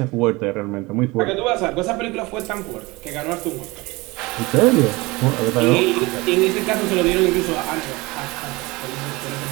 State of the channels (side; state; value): left; quieter; 23.1 dB